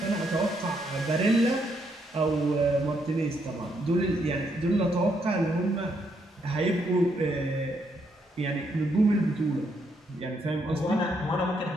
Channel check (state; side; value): normal; both; correlation 0.75